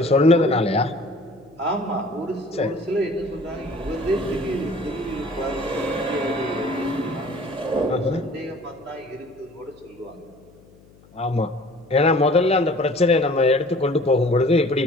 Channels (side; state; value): left; noise; hum, 27 dB below the sound